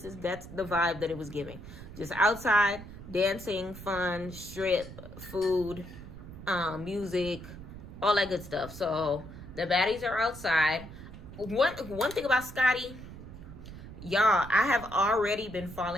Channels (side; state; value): right; noise; rumble, 14 dB below the sound